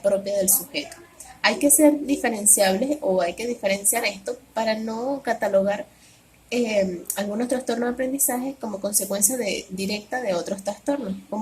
del sujeto. Hay que ser diferenciables o hay que diferenciar esto para no catalogar algunos trastornos de aprendizaje como consecuencia directa de otros trastornos,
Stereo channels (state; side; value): identical; both; correlation 1.00